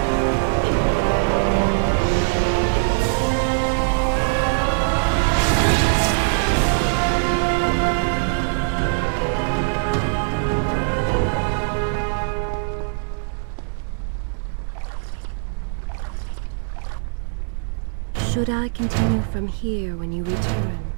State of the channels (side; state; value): left; silent; digital silence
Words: Should I continue from here when you return?